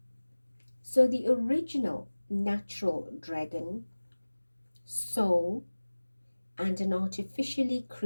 So the original natural dragon, soul, and an artificially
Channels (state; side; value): inverted; both; correlation -1.00